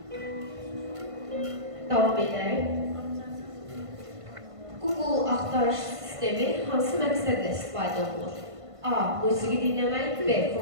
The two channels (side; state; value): left; late; 1.5 ms